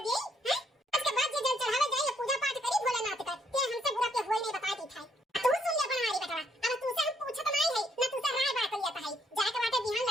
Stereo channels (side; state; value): both; normal; correlation 0.71